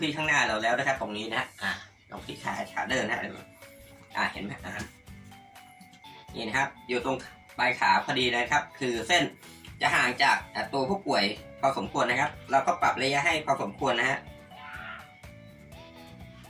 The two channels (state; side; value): identical; both; correlation 1.00